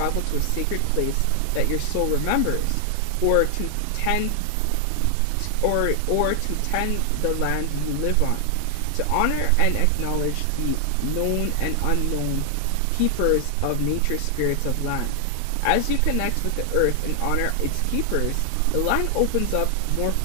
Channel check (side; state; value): both; different; correlation 0.00